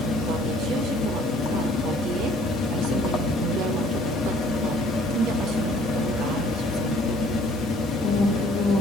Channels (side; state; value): both; normal; correlation 0.56